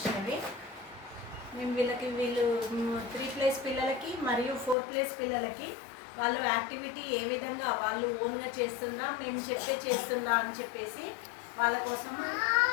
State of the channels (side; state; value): right; drops out; at 4.8 s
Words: మేము వీళ్ళు 3+ పిల్లలకి మరియు 4+ పిల్లలకి వాళ్ళు యాక్టివిటీ ఏ విధంగా వాళ్ళు ఓన్గా చేస్తుందా మేము చేస్తుందా అని చెప్పేసి వాళ్ళ కోసం